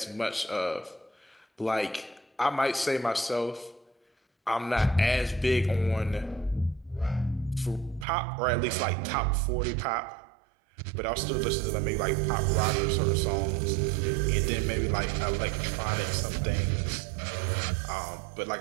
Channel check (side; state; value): left; drops out; at 8.1 s